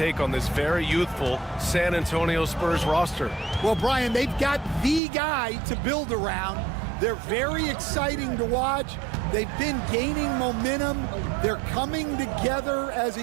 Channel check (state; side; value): drops out; left; at 5.0 s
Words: on this very youthful San Antonio Spurs roster? Well, Brian, they've got the guy to build around. They're very exciting to watch. They've been gaining momentum. They're coming together as